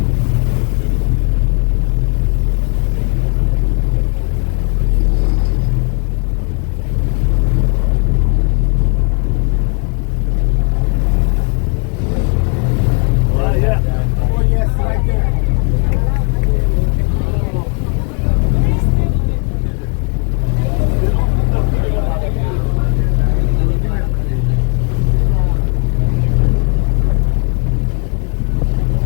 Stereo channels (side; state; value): right; quieter; 37.2 dB